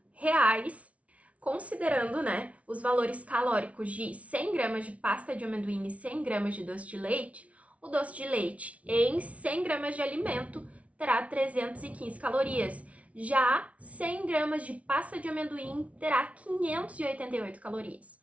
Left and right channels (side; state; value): left; late; 0.065 ms